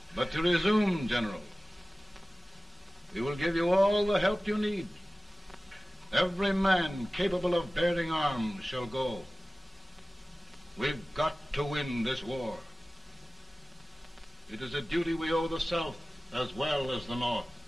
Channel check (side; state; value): both; normal; correlation 0.97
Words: But to resume, General, we will give you all the help you need. Every man capable of bearing arms shall go. We've got to win this war. It is a duty we owe the South as well as the North.